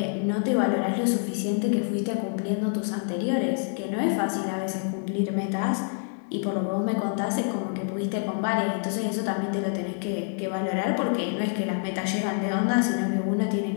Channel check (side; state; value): right; silent; 56 dB below the other